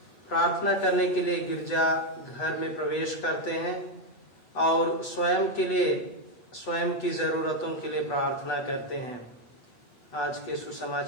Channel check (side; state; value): right; late; 8.5 ms